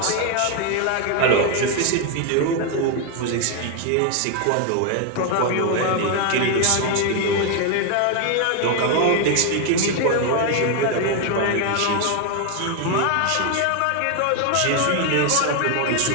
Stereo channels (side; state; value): both; different; correlation 0.01